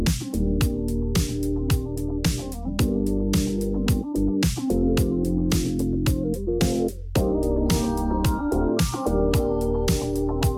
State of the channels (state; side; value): identical; both; correlation 1.00